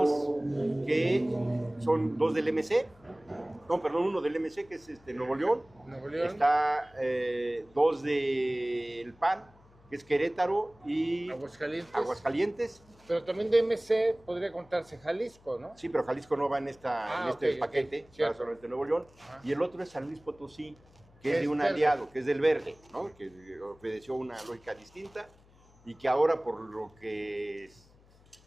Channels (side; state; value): left; noise; hum, 28 dB below the sound